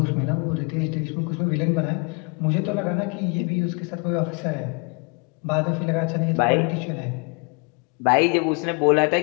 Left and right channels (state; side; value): quieter; right; 32.4 dB